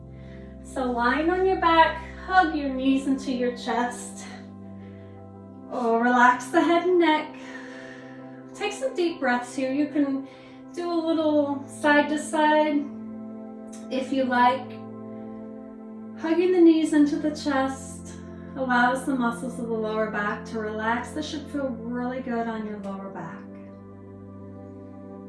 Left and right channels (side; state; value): both; identical; correlation 1.00